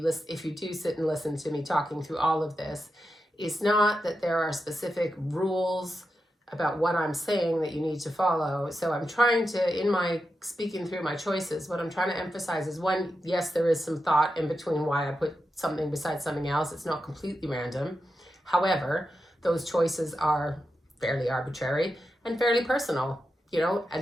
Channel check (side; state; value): both; normal; correlation 0.88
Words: if you do sit and listen to me talking through all of this, is not that there are specific rules about what I'm saying that you need to follow. So I'm trying to, in my speaking through my choices, what I'm trying to emphasize is, one, yes, there is some thought in between why I put something beside something else. It's not completely random. However, those choices are fairly arbitrary and fairly personal.